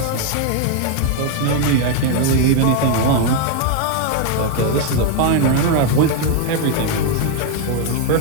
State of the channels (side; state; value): both; different; correlation 0.01